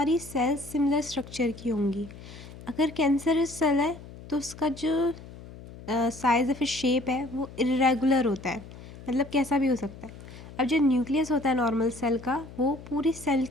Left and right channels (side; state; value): left; noise; hum, 16 dB below the sound